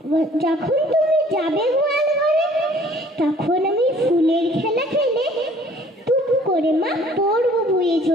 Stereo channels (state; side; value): normal; both; correlation 0.55